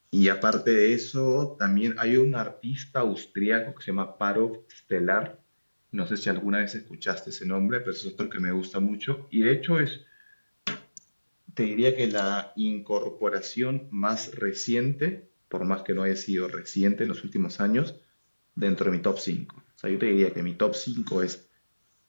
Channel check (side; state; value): both; inverted; correlation -1.00